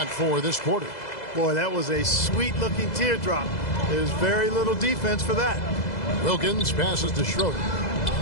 4 this quarter. Boy, that was a sweet-looking teardrop. There's very little defense for that. Wilkins passes to Schroeder.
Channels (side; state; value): right; late; 2.0 ms